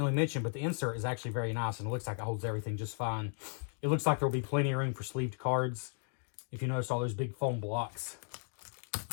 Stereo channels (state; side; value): silent; right; 54 dB below the other